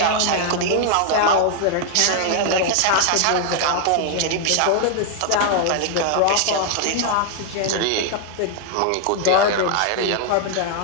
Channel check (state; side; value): different; both; correlation 0.00